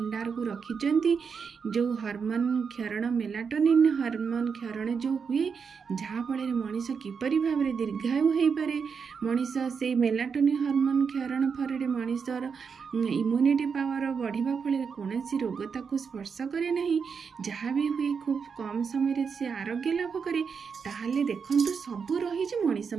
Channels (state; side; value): quieter; left; 6.0 dB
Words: को रखिचंती जो हार्मोन क्षरण मेलाटोनिन हार्मोन क्षरण जो हुए जहाँफल मनीष किपरि भावरे दीर्घायु हो पारे मनीष से मेलाटोनिन हार्मोन क्षरण फल मनीषर इम्यूनिटी पावर बढ़िबा फल कौन रोग ताकू स्पर्श करे नहीं जहाँ भी हुए खूब कम समय से आरोग्य लाभ करे ताहले देखंतु सबू रही मनीष